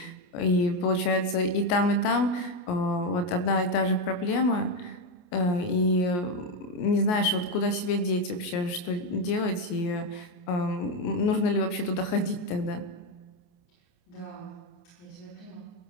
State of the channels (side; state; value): right; late; 28 ms